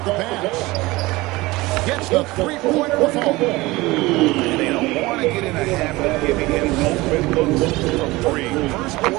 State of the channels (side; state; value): left; quieter; 20.8 dB